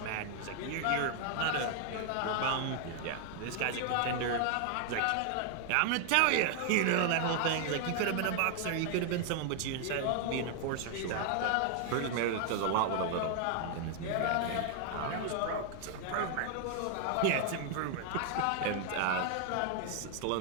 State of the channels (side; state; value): both; different; correlation 0.00